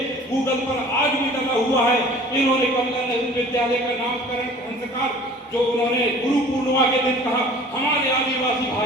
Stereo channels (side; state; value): both; normal; correlation 0.47